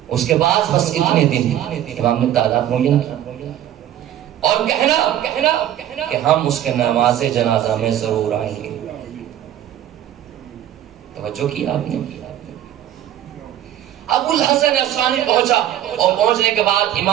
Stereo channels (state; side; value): quieter; left; 11.7 dB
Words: اس کے بعد بس اتنے دن امام نے تعداد معین کیا، اور کہنا کہ ہم اس کے نماز جنازہ میں ضرور آئیں گے۔ توجہ کی آپ نے؟ ابو الحسن اصفہانی پہنچا، اور پہنچنے کے بعد